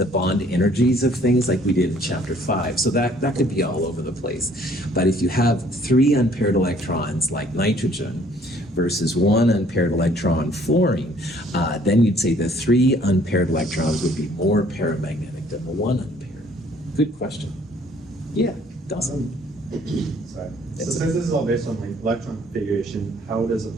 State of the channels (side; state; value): both; normal; correlation 0.59